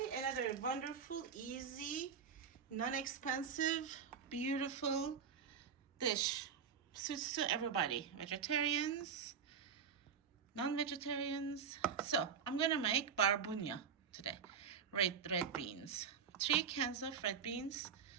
another wonderful, easy, non-expensive, beautiful dish. Suits to everybody. Vegetarians, non-vegetarians. So I'm gonna make barbunya today. Red beans. 3 cans of red beans,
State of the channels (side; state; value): left; quieter; 6.9 dB